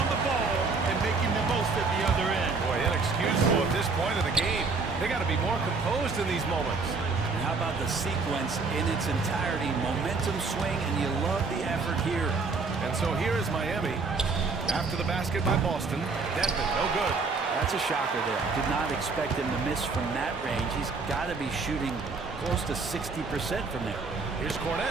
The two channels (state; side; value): quieter; left; 4.3 dB